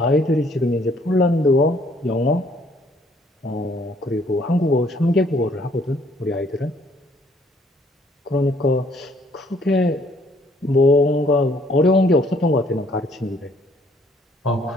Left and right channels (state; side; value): normal; both; correlation 0.63